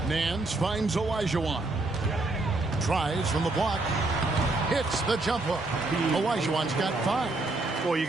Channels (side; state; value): left; quieter; 3.1 dB